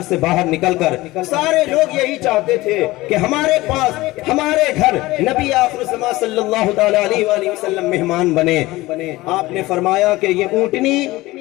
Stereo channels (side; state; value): right; quieter; 19.2 dB